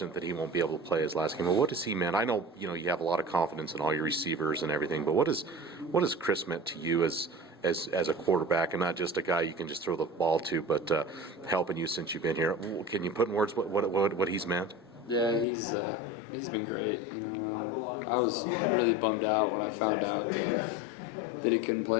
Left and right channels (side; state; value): right; drops out; at 15.5 s